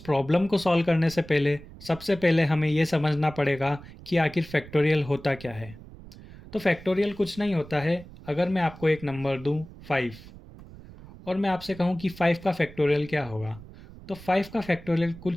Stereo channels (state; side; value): noise; right; rumble, 18 dB below the sound